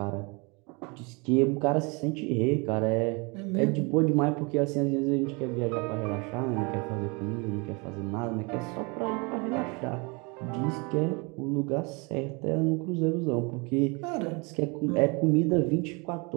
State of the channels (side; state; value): left; quieter; 29.8 dB